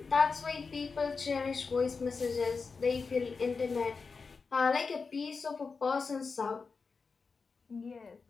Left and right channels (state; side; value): quieter; right; 4.8 dB